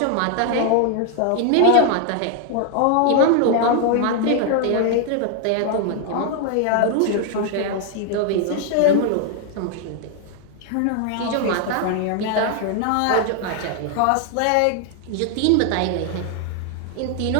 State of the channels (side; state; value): both; different; correlation 0.00